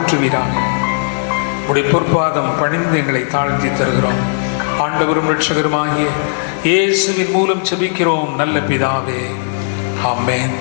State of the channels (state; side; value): silent; right; digital silence